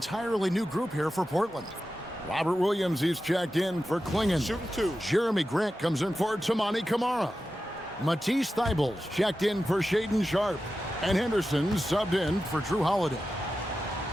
new group here for Portland. Robert Williams, he's checked in for Klingon. Shooting 2. Jeremy Grant comes in for Tamani Kamara. Matisse Thybulles checked in for Shaedon Sharpe. And Henderson subbed in for Drew Holiday.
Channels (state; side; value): normal; both; correlation 0.92